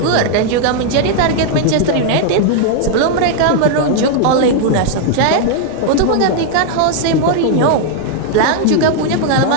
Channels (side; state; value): both; different; correlation 0.00